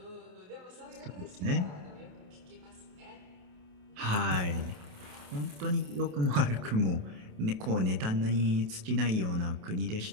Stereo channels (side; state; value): left; late; 28 ms